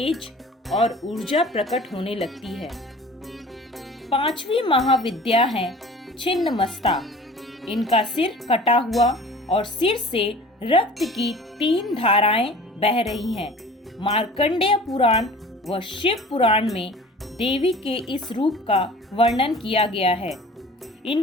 और ऊर्जा प्रकट होने लगती है। पांचवी महाविद्या है छिन्नमस्ता। इनका सिर कटा हुआ और सिर से रक्त की 3 धाराएं बह रही हैं। मार्कंडेय पुराण व शिव पुराण में देवी के इस रूप का वर्णन किया गया है।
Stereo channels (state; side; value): normal; both; correlation 0.44